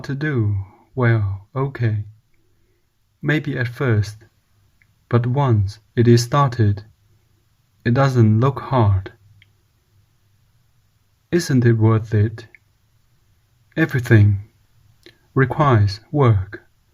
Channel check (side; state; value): both; identical; correlation 1.00